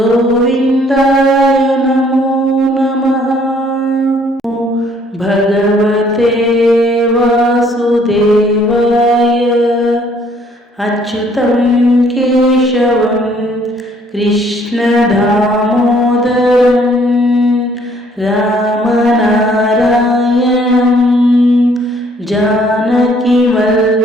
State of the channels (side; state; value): both; normal; correlation 0.62